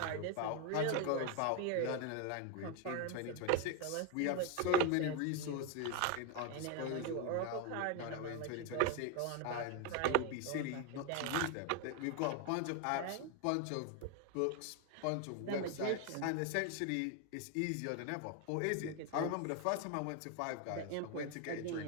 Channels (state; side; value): different; both; correlation 0.01